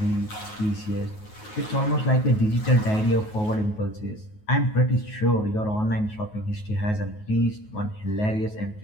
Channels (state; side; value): late; right; 9.4 ms